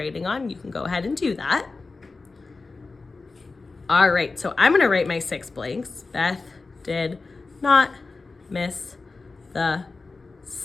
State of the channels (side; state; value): right; quieter; 3.9 dB